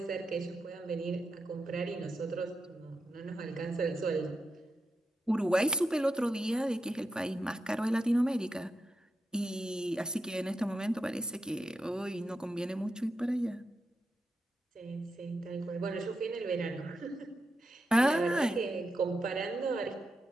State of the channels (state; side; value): normal; both; correlation 0.86